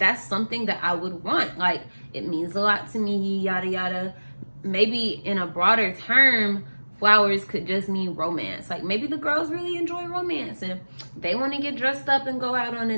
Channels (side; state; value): both; inverted; correlation -1.00